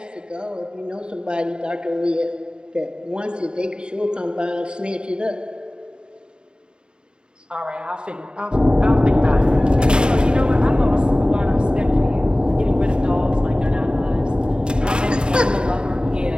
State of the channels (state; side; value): late; left; 0.050 ms